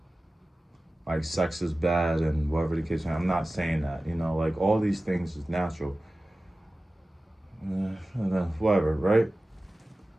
like sex is bad and whatever the case. I'm not saying that, you know, like all these things is natural. Whatever, right?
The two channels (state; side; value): normal; both; correlation 0.96